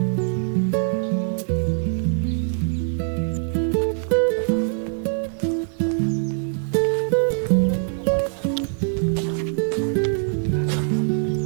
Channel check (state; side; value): silent; left; digital silence